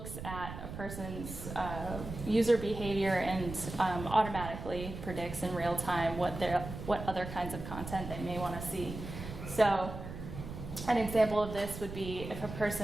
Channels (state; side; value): noise; right; rumble, 9 dB below the sound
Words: at a person's user behavior and automatically predicts in real time what other kinds of content they may want to see. So an example of this would be if a